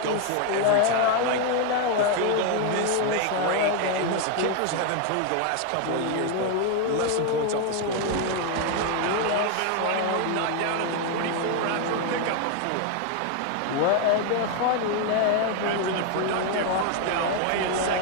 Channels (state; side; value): different; both; correlation 0.01